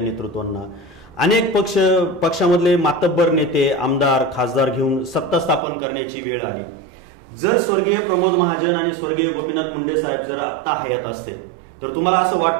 अनेक पक्षामधले मातब्बर नेते, आमदार, खासदार घेऊन सत्ता स्थापन करण्याची वेळ आली. जर स्वर्गीय प्रमोद महाजन आणि स्वर्गीय गोपीनाथ मुंडे साहेब जर आत्ता हयात असते तर तुम्हाला असं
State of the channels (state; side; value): drops out; left; at 5.6 s